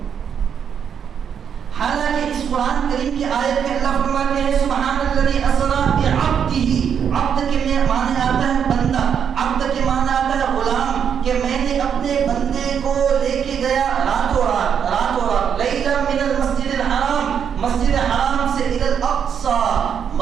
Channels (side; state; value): left; quieter; 7.8 dB